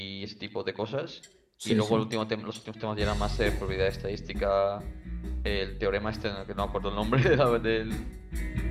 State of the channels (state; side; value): identical; both; correlation 1.00